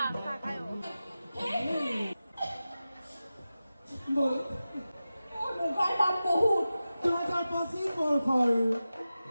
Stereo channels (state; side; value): inverted; both; correlation -0.94